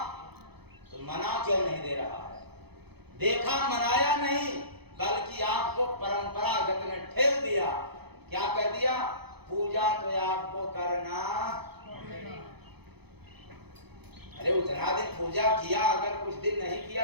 तो मना क्यों नहीं दे रहा है? देखा, मनाया नहीं, बल्कि आपको परंपरागत में ठेल दिया। क्या कह दिया? पूजा तो आपको करना। अरे उतना दिन पूजा किया, अगर कुछ दिन नहीं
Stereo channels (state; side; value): late; left; 0.98 ms